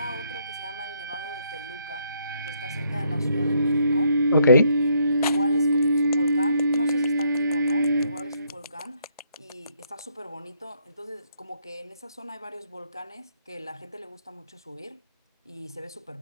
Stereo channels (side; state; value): both; inverted; correlation -0.71